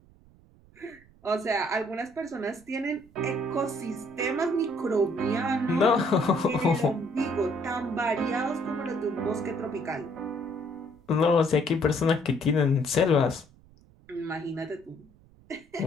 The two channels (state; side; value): noise; right; rumble, 27 dB below the sound